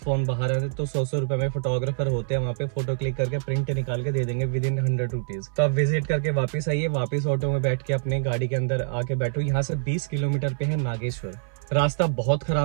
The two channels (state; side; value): silent; left; 57 dB below the other